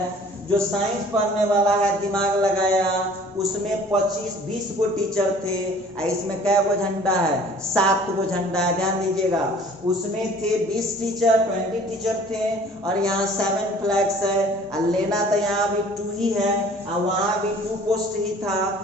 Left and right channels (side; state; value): both; normal; correlation 0.50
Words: जो साइंस पढ़ने वाला है दिमाग लगाया, उसमें 25-20 को टीचर थे, इसमें कै गो झंडा है? 7 गो झंडा है, ध्यान दीजिएगा। उसमें थे 20 टीचर, 20 टीचर थे, और यहाँ 7 फ्लैग्स है। और लेना तो यहाँ भी 2 ही है, और वहाँ भी 2 पोस्ट ही था,